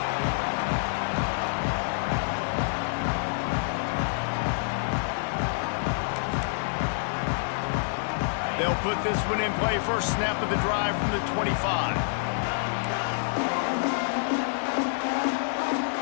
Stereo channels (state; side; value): silent; right; 60 dB below the other